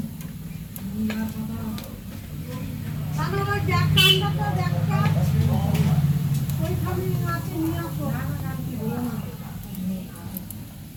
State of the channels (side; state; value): both; identical; correlation 1.00